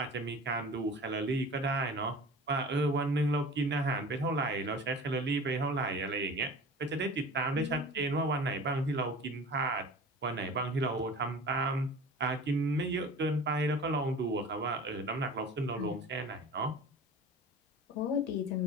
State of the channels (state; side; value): normal; both; correlation 0.39